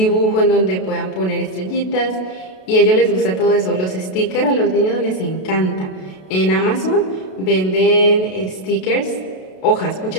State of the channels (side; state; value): right; late; 32 ms